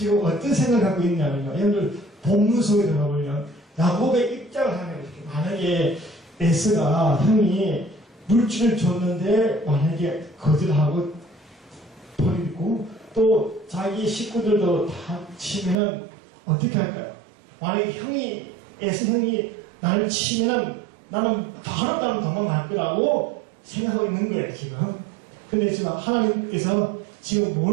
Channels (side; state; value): left; drops out; at 15.8 s